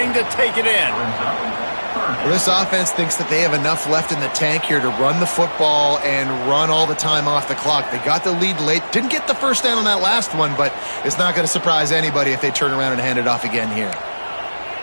to take it in. Well, this offense thinks that they have enough left in the tank here to run the football and run all the time off the clock. They got the lead late. Didn't get the first down on that last one, but it's not going to surprise anybody if they turn around and hand it off again here.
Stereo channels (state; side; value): inverted; both; correlation -1.00